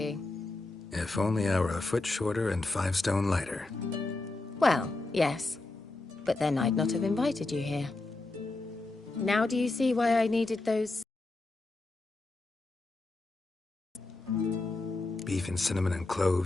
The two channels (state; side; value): quieter; right; 3.1 dB